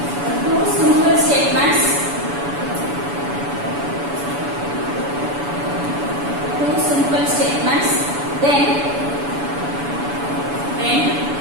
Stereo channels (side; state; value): left; late; 7.0 ms